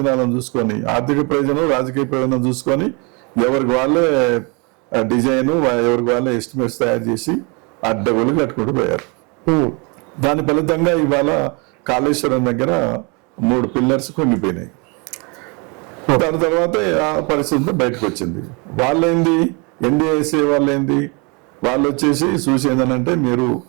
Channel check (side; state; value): left; quieter; 31.0 dB